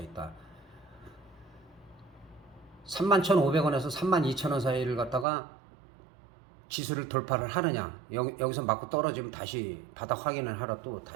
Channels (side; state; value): left; drops out; at 5.2 s